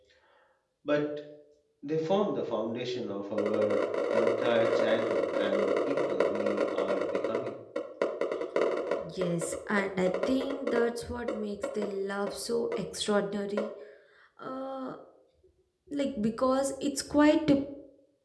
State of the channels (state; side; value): identical; both; correlation 1.00